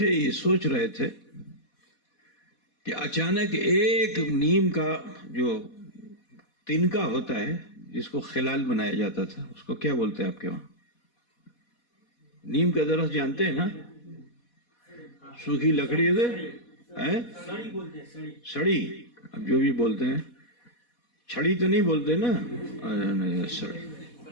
یہ سوچ رہے تھے کہ اچانک ایک نیم کا جو تنکا ہوتا ہے جس کو خلال بنایا جاتا تھا، اس کو کیا بولتے ہیں آپ کے وہاں؟ نیم کا درخت جانتے ہیں نا، سوکھی لکڑی ہے، سڑی، اب جو بھی بولتے ہیں، چھڑی تو نہیں بولتے نا، سڑی۔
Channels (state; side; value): late; right; 4.1 ms